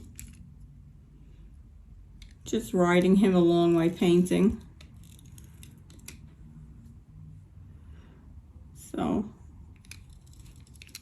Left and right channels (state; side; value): identical; both; correlation 1.00